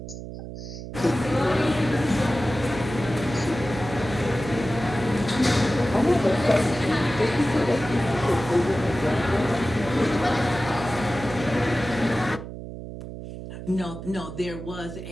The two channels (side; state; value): right; noise; hum, 10 dB below the sound